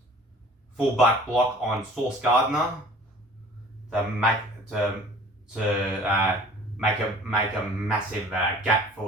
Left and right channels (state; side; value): normal; both; correlation 0.48